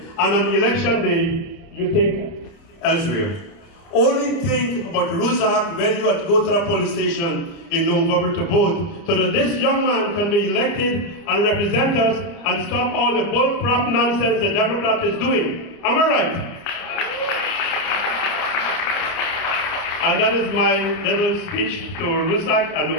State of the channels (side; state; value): right; late; 30 ms